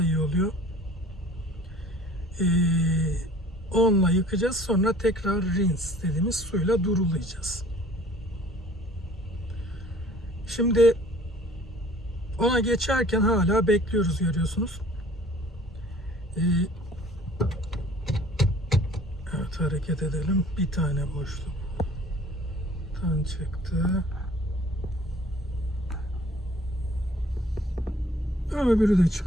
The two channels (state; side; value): normal; both; correlation 0.52